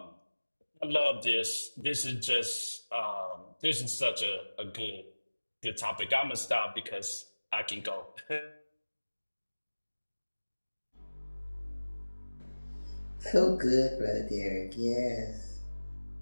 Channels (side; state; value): both; inverted; correlation -1.00